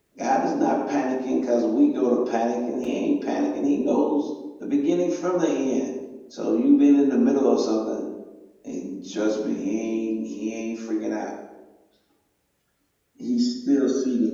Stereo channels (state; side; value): identical; both; correlation 1.00